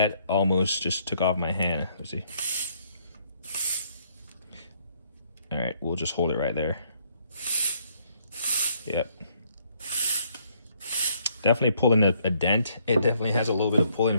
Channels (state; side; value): inverted; both; correlation -0.69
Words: almost just took off my hand. Let's see. All right, we'll just hold it right there. Yep. Definitely pulling a dent. It definitely has a little bit of pulling